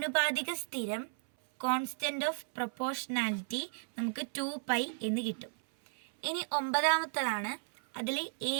സ്ഥിരം കോൺസ്റ്റന്റ് ഓഫ് പ്രൊപ്പോർഷണാലിറ്റി നമുക്ക് 2π എന്ന് കിട്ടും. ഇനി ഒമ്പതാമത്തതാണ്, അതിൽ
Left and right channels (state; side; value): silent; left; 55 dB below the other